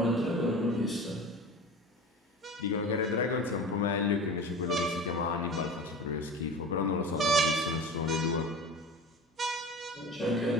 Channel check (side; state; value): both; normal; correlation 0.34